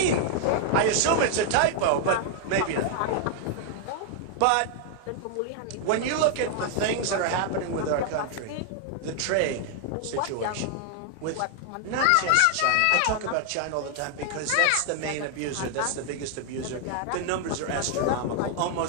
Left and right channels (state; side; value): different; both; correlation 0.00